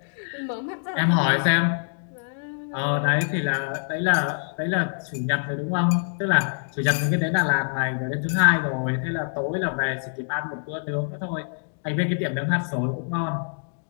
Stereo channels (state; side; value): silent; right; digital silence